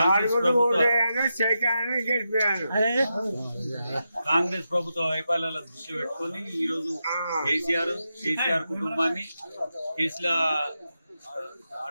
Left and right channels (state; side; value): inverted; both; correlation -0.87